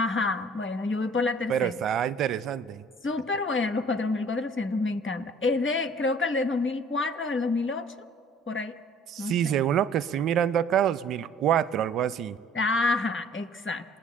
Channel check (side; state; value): both; normal; correlation 0.53